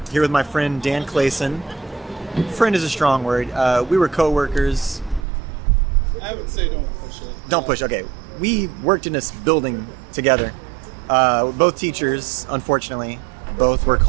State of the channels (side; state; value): left; drops out; at 5.2 s